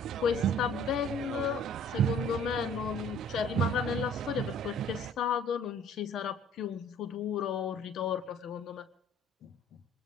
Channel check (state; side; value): normal; both; correlation 0.53